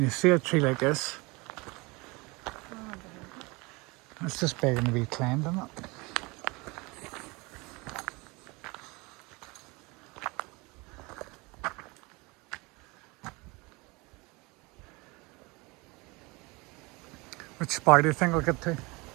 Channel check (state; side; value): quieter; left; 25.8 dB